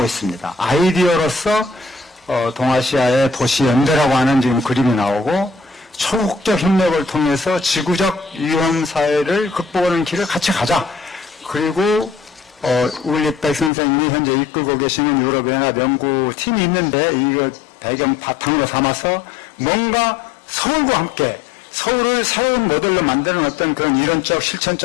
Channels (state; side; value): drops out; right; at 13.7 s